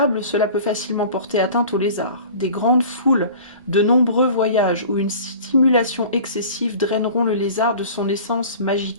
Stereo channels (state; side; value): inverted; both; correlation -0.42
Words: cela peut facilement porter atteinte au lézard. Des grandes foules, de nombreux voyages ou une stimulation excessive draineront le lézard de son essence